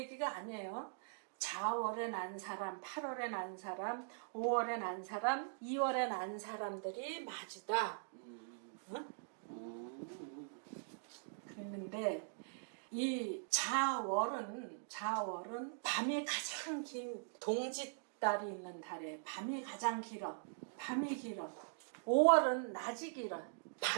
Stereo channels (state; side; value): silent; left; digital silence